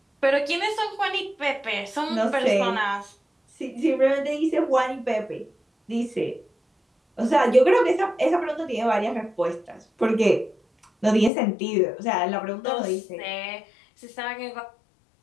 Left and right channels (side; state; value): right; drops out; at 11.3 s